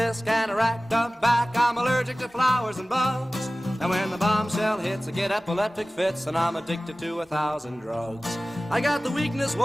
and a racked up back. I'm allergic to flowers and bugs. And when the bombshell hits, I get epileptic fits, and I'm addicted to 1,000 drugs. I got the weakness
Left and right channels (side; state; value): both; normal; correlation 0.97